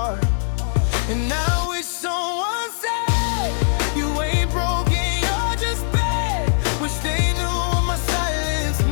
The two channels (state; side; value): silent; right; digital silence